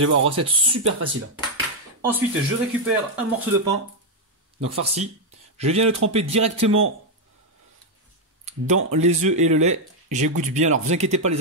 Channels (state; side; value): normal; both; correlation 0.01